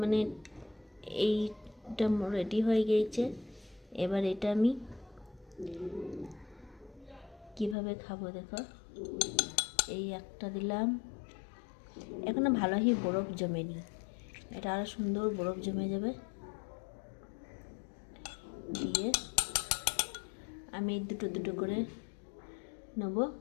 মানে এইটা রেডি হয়ে গিয়েছে। এবার এটা আমি কিভাবে খাবো দেখো, এই একটা দিলাম, এখনো ভালোই বরফ জমেনি, এটা আরো সুন্দর বরফ জমে যাবে। দিয়ে আমি দুটো দুটো করে নেব,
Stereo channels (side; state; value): right; drops out; at 7.8 s